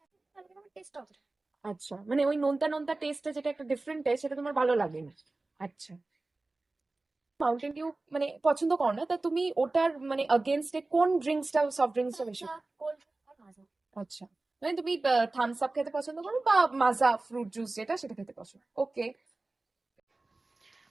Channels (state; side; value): quieter; left; 3.2 dB